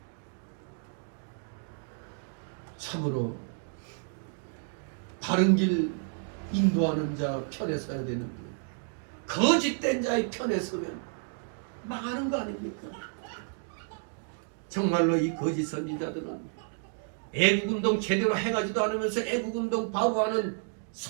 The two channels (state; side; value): silent; left; 57 dB below the other